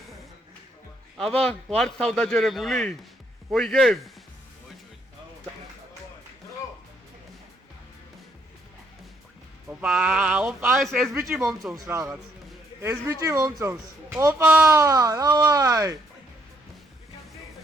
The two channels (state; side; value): normal; both; correlation 0.70